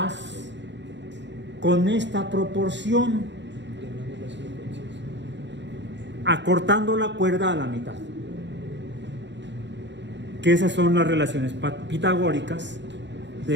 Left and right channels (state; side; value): late; left; 0.52 ms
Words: con esta proporción? Acortando la cuerda a la mitad. Que esas son las relaciones pitagóricas